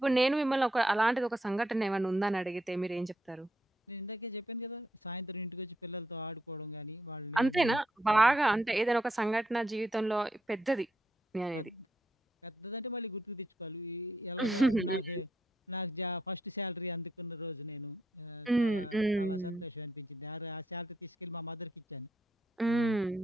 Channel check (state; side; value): normal; both; correlation 0.78